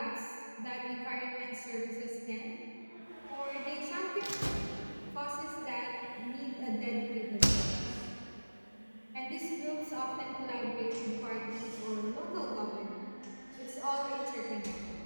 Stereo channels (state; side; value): inverted; both; correlation -1.00